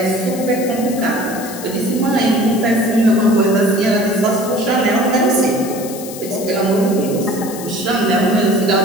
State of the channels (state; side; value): noise; left; hiss, 13 dB below the sound